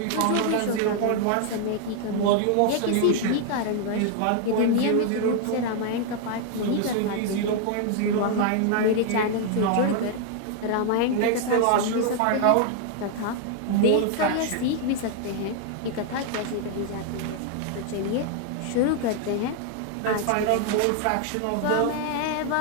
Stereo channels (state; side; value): different; both; correlation 0.00